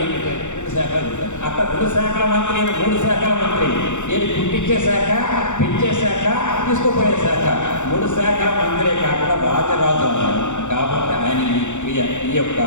2 శాఖలు అక్కడ 2 శాఖల మంత్రి, ఈయన 3 శాఖల మంత్రి. ఈయన పుట్టించే శాఖ, పెంచే శాఖ, తీసుకుపోయే శాఖ, 3 శాఖల మంత్రే కాకుండా రాజరాజు అన్నాడు. కాబట్టి ఆయన ఈ యొక్క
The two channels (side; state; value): right; late; 0.84 ms